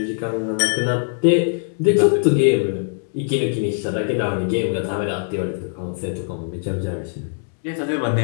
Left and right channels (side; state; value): right; silent; digital silence